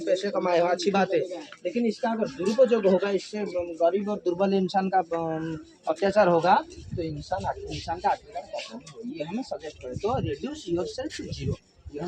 पैसे कमाए हो, अच्छी बात है, लेकिन इसका अगर दुरुपयोग होगा, इससे गरीब और दुर्बल इंसान का अत्याचार होगा तो इंसान का आखिरकार ये हमें सजेस्ट करे। तो रिड्यूस योरसेल्फ टू जीरो, ये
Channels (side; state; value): both; identical; correlation 1.00